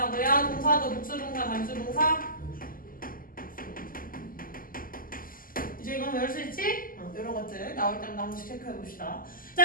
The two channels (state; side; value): late; right; 0.41 ms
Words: 동사도 복수동사, 단수동사. 이제 이건 외울 수 있지? 이런 것들 나올 때마다 한 번씩 체크해 봅시다.